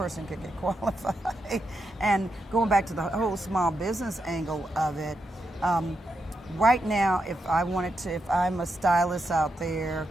could get qualified. And going back to the whole small business angle of it, right now, if I'm a stylist out there,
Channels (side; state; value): both; normal; correlation 0.84